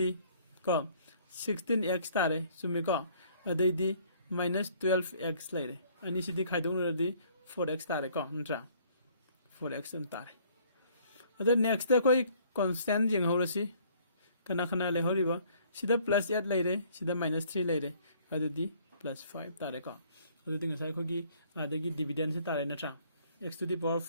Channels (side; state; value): both; inverted; correlation -0.59